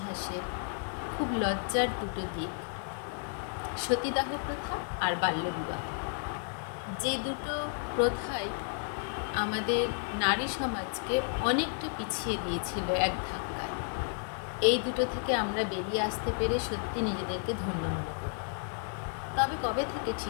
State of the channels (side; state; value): right; silent; 56 dB below the other